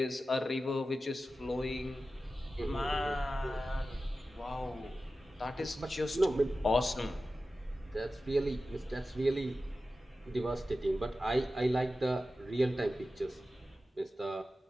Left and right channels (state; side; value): normal; both; correlation 0.94